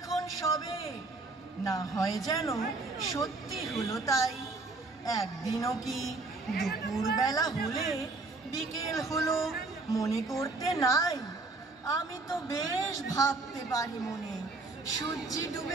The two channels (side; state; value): left; quieter; 3.4 dB